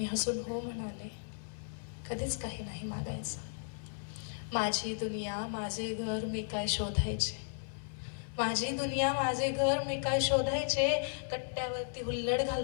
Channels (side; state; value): right; silent; 54 dB below the other